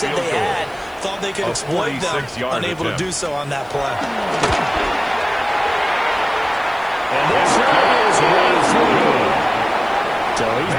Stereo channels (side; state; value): left; noise; hiss, 29 dB below the sound